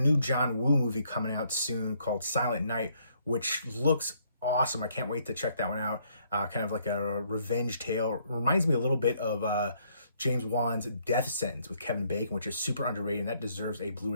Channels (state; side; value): inverted; both; correlation -0.68